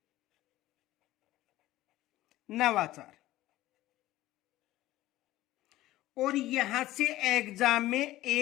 नवाचार। और यहां से एग्जाम में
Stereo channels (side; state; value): right; quieter; 15.9 dB